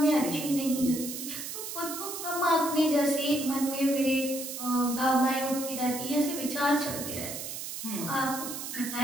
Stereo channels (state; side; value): noise; right; hiss, 7 dB below the sound